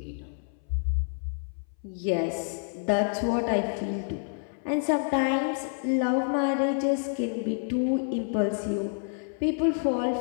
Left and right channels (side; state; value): right; silent; 59 dB below the other